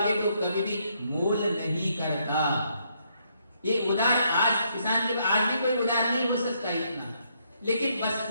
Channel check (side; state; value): both; inverted; correlation -0.73